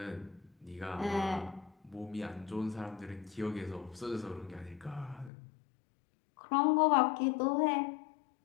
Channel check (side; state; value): right; drops out; at 5.3 s